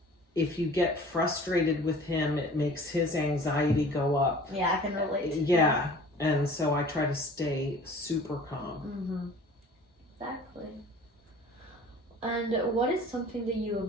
if you get frustrated with him, it makes his anxiety go up. Yeah, I can relate to Yeah, and so I try to stay super calm. Exactly. And what is something that you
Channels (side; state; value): both; normal; correlation 0.46